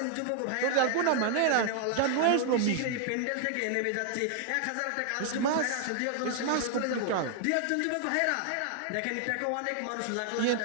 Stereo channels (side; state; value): both; different; correlation 0.00